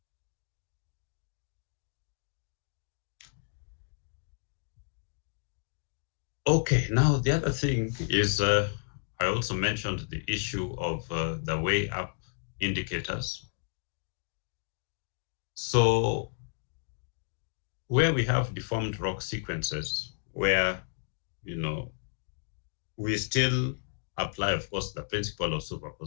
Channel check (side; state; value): right; silent; digital silence